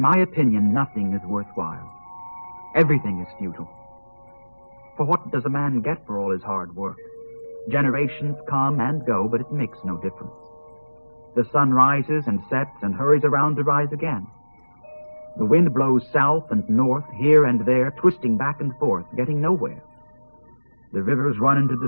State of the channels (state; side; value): inverted; both; correlation -1.00